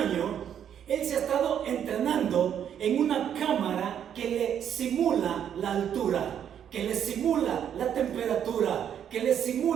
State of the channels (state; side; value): quieter; left; 9.1 dB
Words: él se ha estado entrenando en una cámara que le simula la altura, que le simula la temperatura, que le